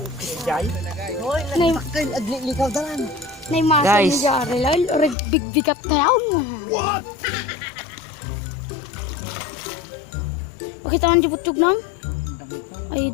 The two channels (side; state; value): right; drops out; at 5.2 s